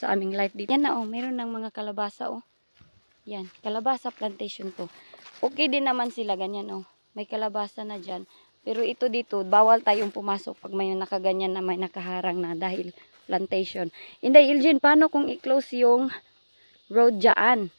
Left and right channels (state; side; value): inverted; both; correlation -1.00